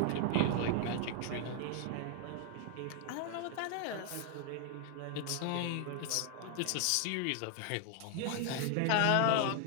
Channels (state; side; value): different; both; correlation 0.00